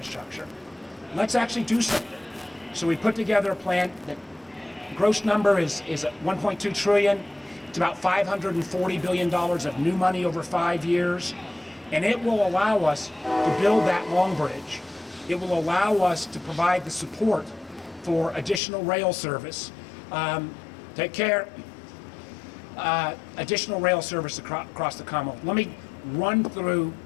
Let's actually do something. So we put together a plan that gross number is 1.2 trillion. It's about $540 billion of new money over 5 years. And it will allow us to build that long bridge. It will allow us to provide the support for additional rail service. Take care. Additional rail service across the Commonwealth. Let me run through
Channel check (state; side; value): drops out; right; at 18.6 s